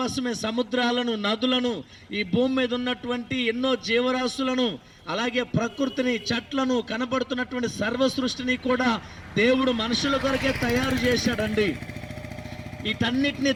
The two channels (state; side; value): identical; both; correlation 1.00